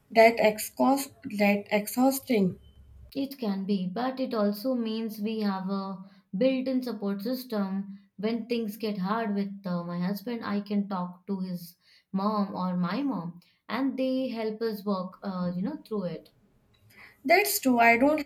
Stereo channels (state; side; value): identical; both; correlation 1.00